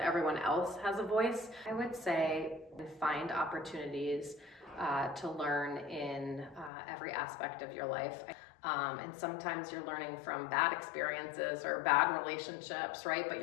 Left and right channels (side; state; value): right; drops out; at 6.7 s